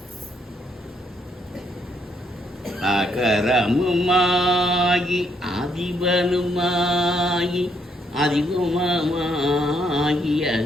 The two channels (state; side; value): normal; both; correlation 0.73